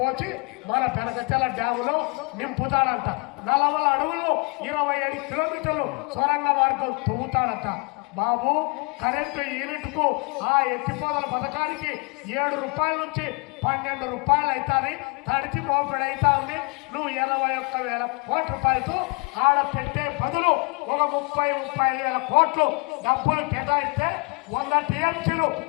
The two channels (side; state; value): right; quieter; 32.2 dB